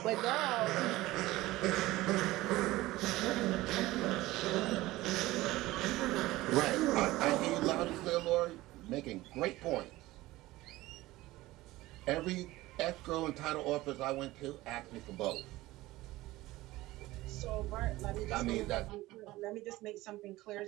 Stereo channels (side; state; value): left; quieter; 18.1 dB